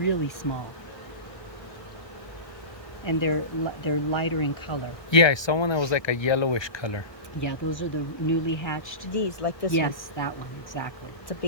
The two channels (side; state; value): right; late; 1.3 ms